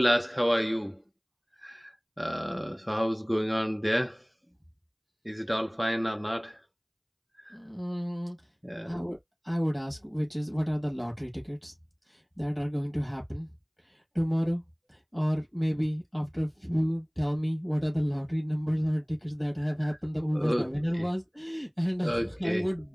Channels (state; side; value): identical; both; correlation 1.00